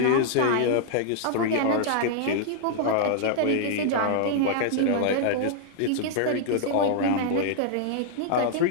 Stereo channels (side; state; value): both; different; correlation -0.01